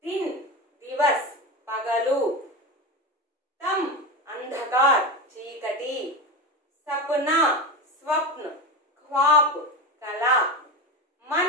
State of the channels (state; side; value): normal; both; correlation 0.20